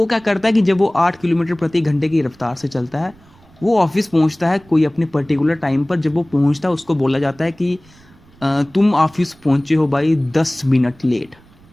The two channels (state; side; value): noise; right; rumble, 28 dB below the sound